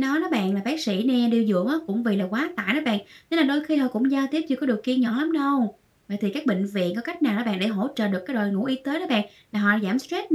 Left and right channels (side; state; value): both; identical; correlation 1.00